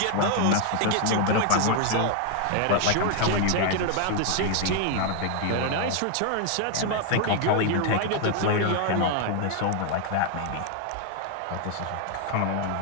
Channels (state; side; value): different; both; correlation 0.00